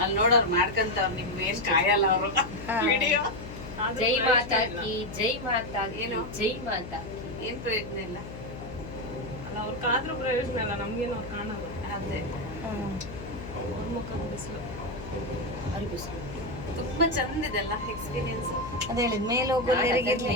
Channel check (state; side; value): noise; left; hum, 11 dB below the sound